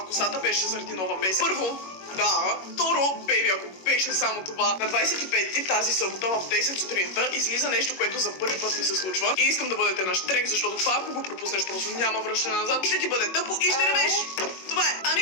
косата, беше заради нова песен. Първо, да. Второ, бейби, ако беше само това, на 25-ти тази събота в 10 сутринта излиза нещо, което за първи път ми се случва. И искам да бъдете на штрек, защото това, ако го пропуснеш, просто няма връщане назад. Ще ти бъде тъпо и ще ревеш. Това е. Ами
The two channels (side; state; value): right; late; 21 ms